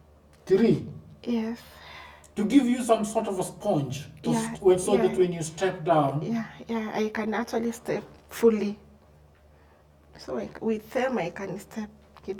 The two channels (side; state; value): both; identical; correlation 1.00